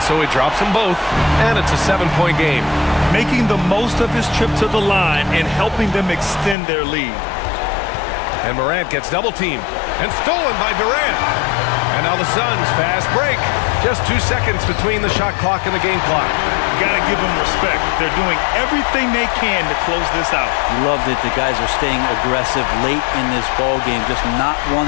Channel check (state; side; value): drops out; right; at 6.6 s